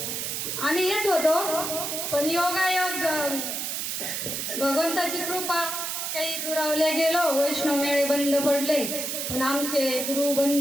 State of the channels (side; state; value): right; noise; hiss, 3 dB below the sound